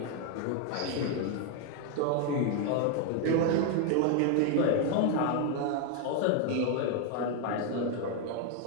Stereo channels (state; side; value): different; both; correlation 0.01